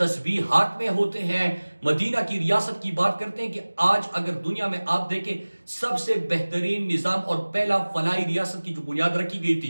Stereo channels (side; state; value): both; inverted; correlation -1.00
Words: हाथ में होते हैं, मदीना की रियासत की बात करते हैं कि आज अगर दुनिया में आप देखें सबसे बेहतरीन निजाम और पहला फलाई रियासत की जो बुनियाद रखी गई थी